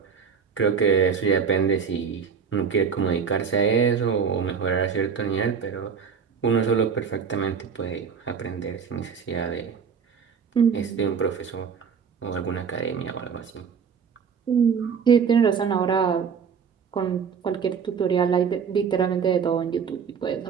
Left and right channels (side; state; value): left; quieter; 6.5 dB